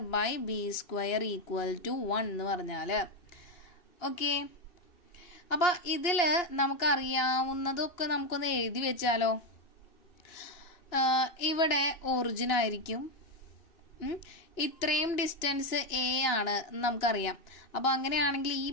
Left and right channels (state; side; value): late; right; 2.9 ms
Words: by B square equal to 1 എന്ന് പറഞ്ഞാല്. ഓക്കെ, അപ്പൊ ഇതില് നമുക്കറിയാവുന്നതൊക്കെ നമുക്കൊന്ന് എഴുതി വെച്ചാലോ. ഇവിടെ ഒറിജിൻ ആയിരിക്കും. ഇത്രയും ഡിസ്റ്റൻസ് എ ആണ് നമുക്കറിയാം. അപ്പൊ അങ്ങനെയാണെങ്കിൽ ഈ